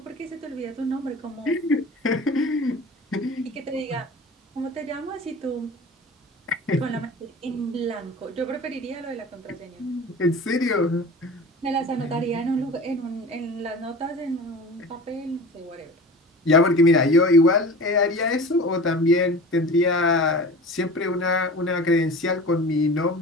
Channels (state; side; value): normal; both; correlation 0.37